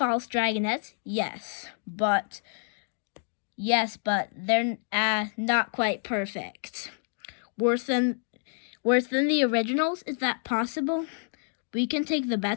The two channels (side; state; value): right; silent; digital silence